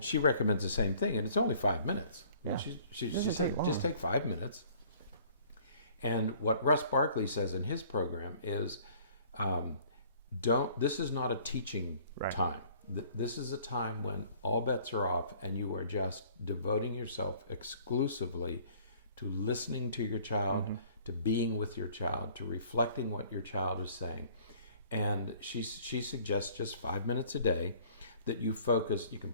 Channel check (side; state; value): both; inverted; correlation -0.55